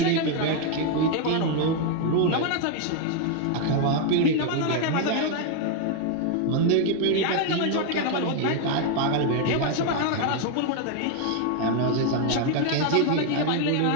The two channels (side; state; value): both; different; correlation 0.01